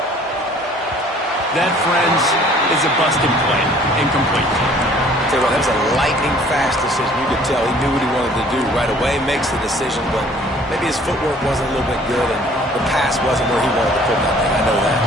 That, friends, is a busted play. Incomplete. Tell you what, that was a lightning-fast decision. You could tell he knew what he wanted to do right away, makes the decision, but maybe his footwork wasn't a little bit good, and the pass wasn't where he wanted to put that thing. I know that.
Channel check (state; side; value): normal; both; correlation 0.54